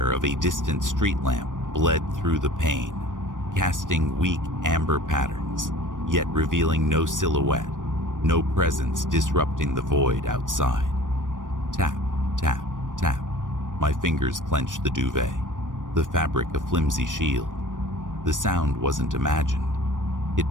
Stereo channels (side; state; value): left; late; 0.88 ms